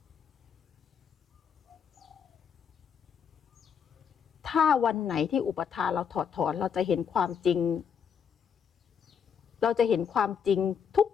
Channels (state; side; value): quieter; right; 7.3 dB